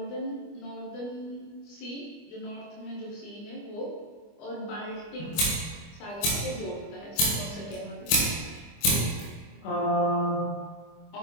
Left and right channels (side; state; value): right; late; 25 ms